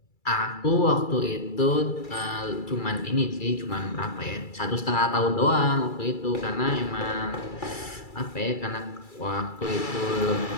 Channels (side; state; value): right; late; 2.3 ms